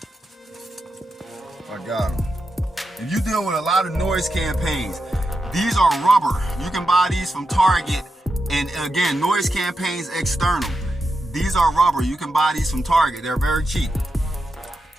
I got them. If you deal with a lot of noise campaigns, these are rubber. You can buy these from Target. And again, noise campaigns external. These are rubber. You can buy these from Target. They're very cheap.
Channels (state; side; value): normal; both; correlation 0.87